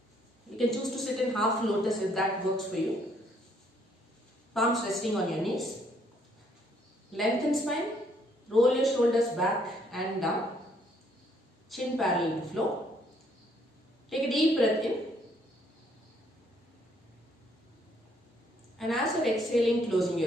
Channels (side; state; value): both; normal; correlation 0.67